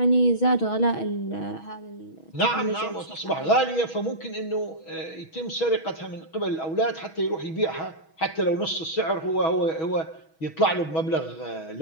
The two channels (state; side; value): late; right; 6.2 ms